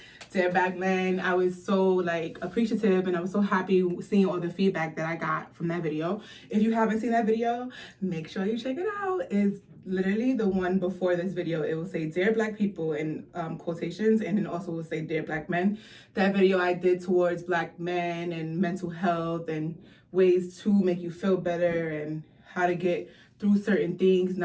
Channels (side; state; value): both; identical; correlation 1.00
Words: Dear Black Men, I was so like appreciative and I was so happy seeing all the feedback that I got from that video. If you haven't seen that video, make sure you check it out. It's literally the one before this video. It will say Dear Black People in quotations, and then also will say Dear Black Men. That video I did towards Black men and mental health and ways to make you feel better and how to get through certain things,